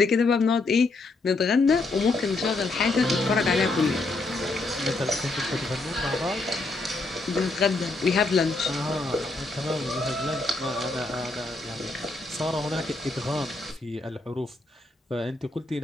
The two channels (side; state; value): right; quieter; 3.3 dB